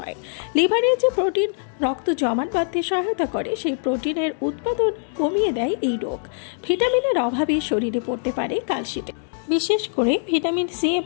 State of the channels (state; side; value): silent; right; digital silence